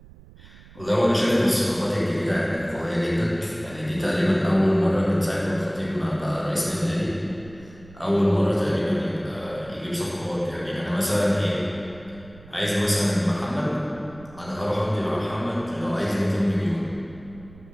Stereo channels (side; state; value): right; noise; rumble, 21 dB below the sound